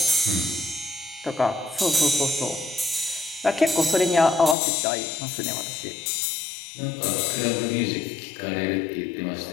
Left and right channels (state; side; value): drops out; right; at 4.5 s